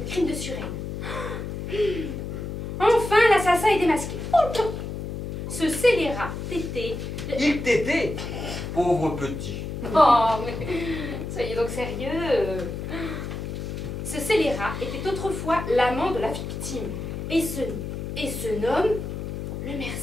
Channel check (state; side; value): noise; left; hum, 6 dB below the sound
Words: Le crime de Suresnes. Enfin, l'assassin est démasqué. Oh, ce scélérat tété... Il t'était, pauvre petit. Oh, mais soyez donc sérieux. Ce scélérat était autrefois l'amant de la victime. Et ce nomme, Le